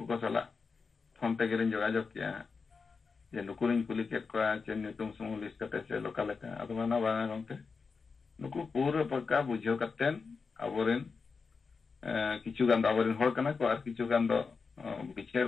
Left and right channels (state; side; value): quieter; right; 4.9 dB